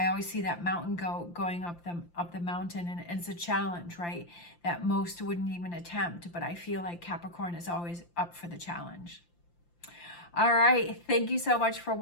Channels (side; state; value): right; late; 5.8 ms